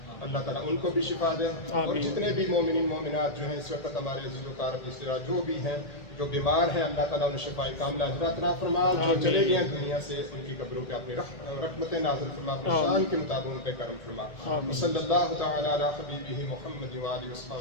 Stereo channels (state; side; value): late; right; 1.8 ms